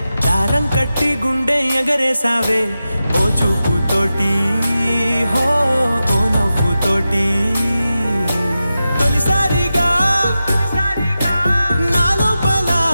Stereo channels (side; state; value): both; inverted; correlation -0.92